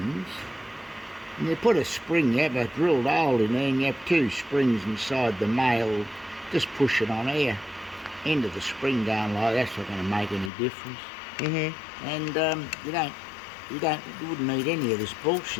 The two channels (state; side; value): drops out; right; at 10.5 s